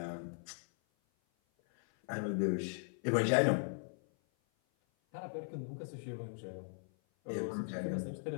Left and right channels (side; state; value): right; silent; 52 dB below the other